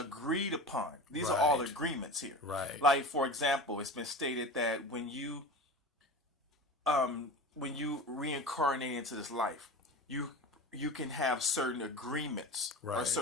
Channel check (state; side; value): normal; both; correlation 0.31